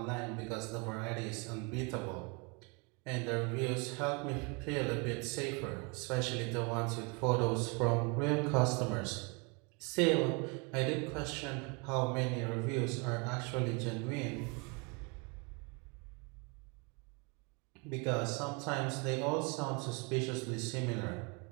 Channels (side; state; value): left; quieter; 30.8 dB